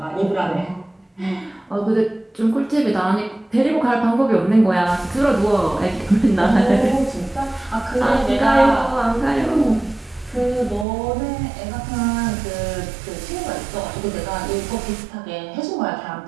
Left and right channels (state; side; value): drops out; left; at 10.9 s